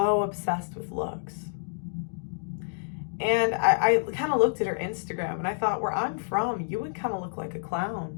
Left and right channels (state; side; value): silent; right; digital silence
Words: obsessed with looks. And I kind of looked at her Instagram and I thought, where I'm from, you would kind of look like a